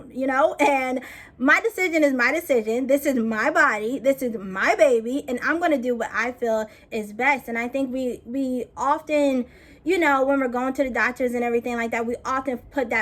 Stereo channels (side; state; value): both; identical; correlation 1.00